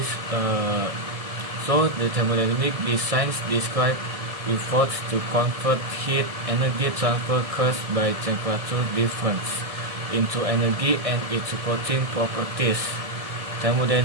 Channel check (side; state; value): left; late; 1.7 ms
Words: the thermodynamic science describe efforts to convert heat energy transfer caused by temperature difference into energy and its supporting properties.